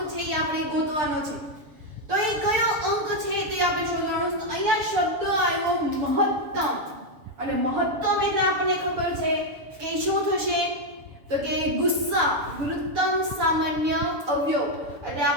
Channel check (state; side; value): late; left; 7.0 ms